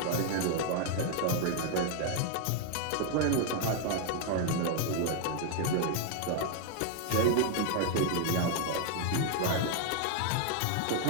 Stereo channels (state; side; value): different; both; correlation 0.00